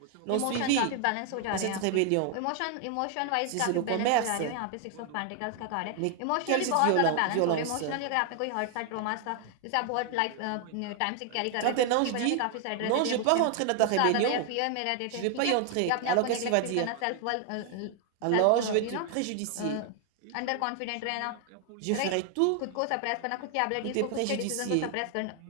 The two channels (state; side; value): different; both; correlation 0.00